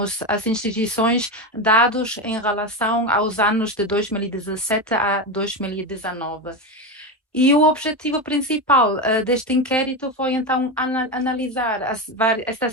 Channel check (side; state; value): both; normal; correlation 0.15